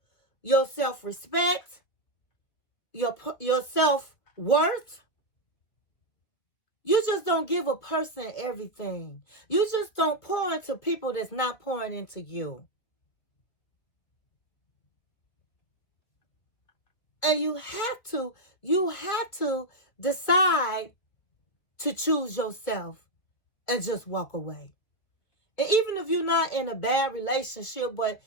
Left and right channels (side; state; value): right; late; 2.4 ms